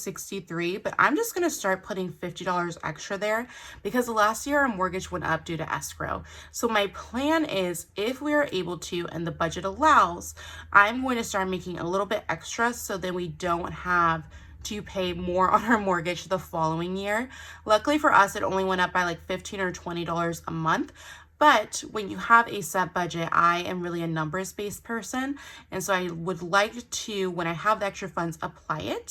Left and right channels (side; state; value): both; identical; correlation 1.00